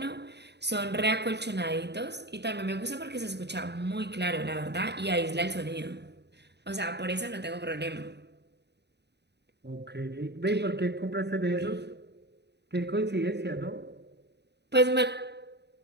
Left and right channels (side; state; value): left; late; 0.49 ms